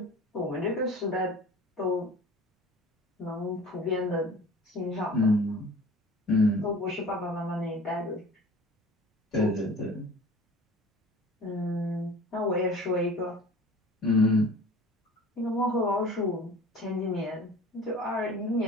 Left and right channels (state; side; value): normal; both; correlation 0.43